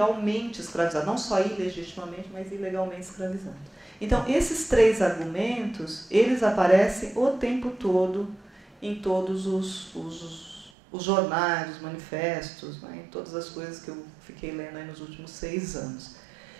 escravizados, não só ilegitimamente, mas ilegalmente escravizados. Então, esses três argumentos, eles aparecem o tempo todo em todos os jornais, os manifestos, né, em todas as coisas que eu fiquei lendo aí nos últimos 6 anos.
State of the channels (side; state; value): left; drops out; at 10.7 s